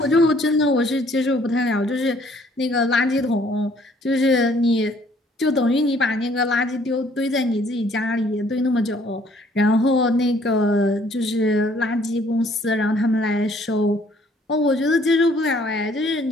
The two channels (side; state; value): both; normal; correlation 0.61